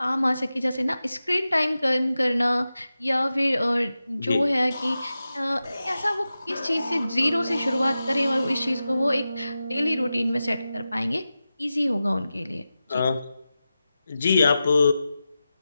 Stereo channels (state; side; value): inverted; both; correlation -0.93